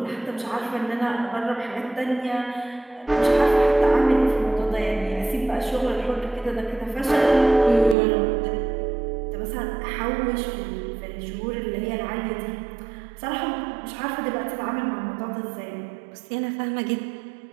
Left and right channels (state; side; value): drops out; left; at 8.0 s